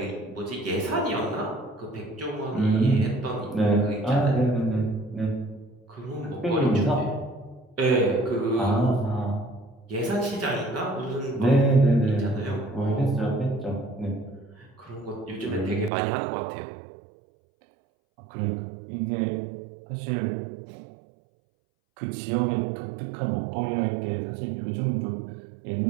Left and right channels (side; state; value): left; drops out; at 15.9 s